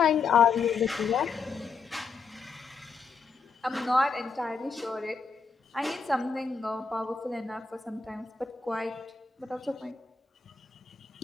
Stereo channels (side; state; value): right; quieter; 5.1 dB